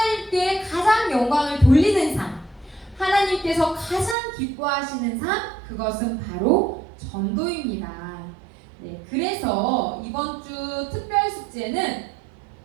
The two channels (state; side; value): drops out; left; at 4.2 s